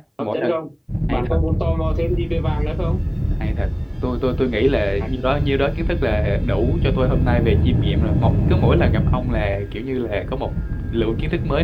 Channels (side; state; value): both; identical; correlation 1.00